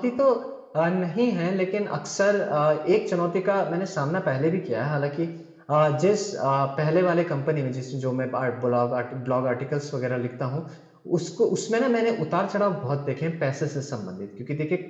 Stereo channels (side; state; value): both; identical; correlation 1.00